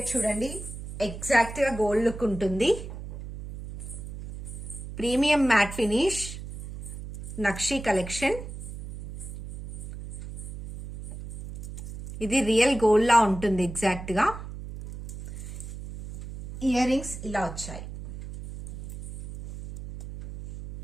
చూడండి, ఎగ్జాక్ట్ గా గోల్డ్ లుక్ ఉంటుంది. ప్రీమియం మ్యాట్ ఫినిష్ నక్షి కలెక్షన్. ఇది రియల్ గోల్డ్ లా ఉంటుంది ఎగ్జాక్ట్ గా. ఇయర్ రింగ్స్ ఇలా వచ్చాయి.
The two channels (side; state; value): right; noise; hum, 10 dB below the sound